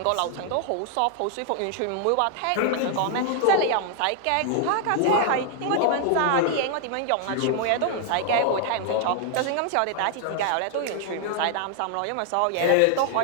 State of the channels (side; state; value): both; different; correlation 0.00